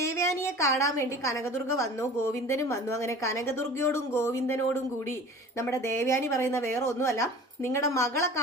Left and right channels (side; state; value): both; normal; correlation 0.41